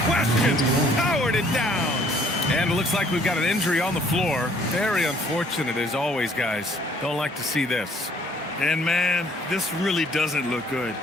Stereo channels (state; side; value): normal; both; correlation 0.60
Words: question, powered it down. And it looks like we've got an injury on the floor. Very unfortunate as always, guys. Don't like to see this. And man, this really doesn't look good.